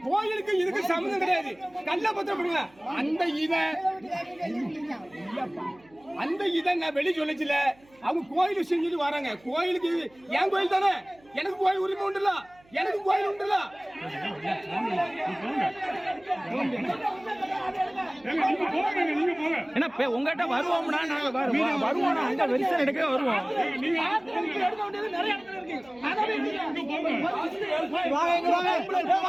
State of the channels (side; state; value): right; noise; hum, 29 dB below the sound